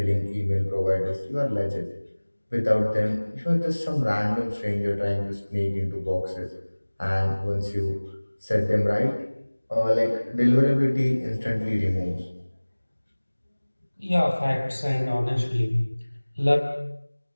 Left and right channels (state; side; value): inverted; both; correlation -1.00